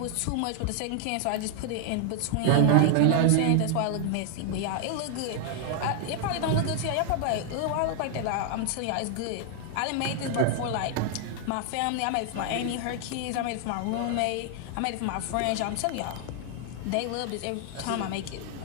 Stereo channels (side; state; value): both; different; correlation 0.00